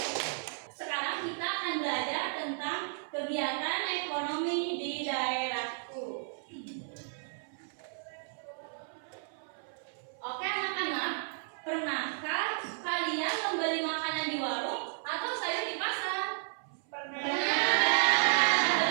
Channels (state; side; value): silent; left; 56 dB below the other